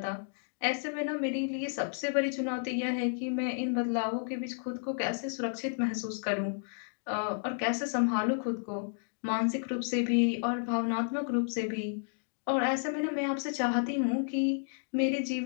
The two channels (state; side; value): silent; right; digital silence